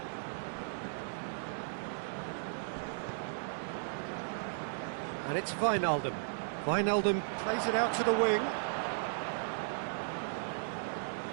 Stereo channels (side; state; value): left; silent; digital silence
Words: And it's Wijnaldum. Wijnaldum plays it out to the wing.